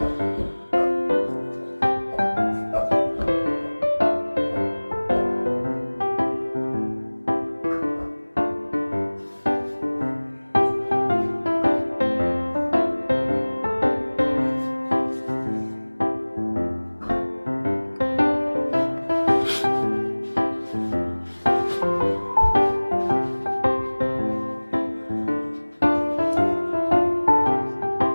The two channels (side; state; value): both; inverted; correlation -1.00